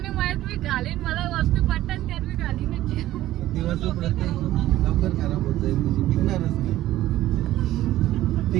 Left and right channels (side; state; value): left; quieter; 14.6 dB